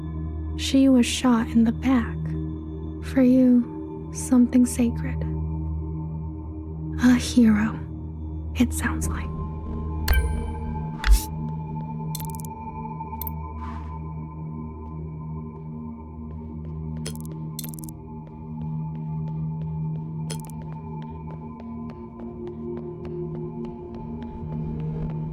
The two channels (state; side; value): identical; both; correlation 1.00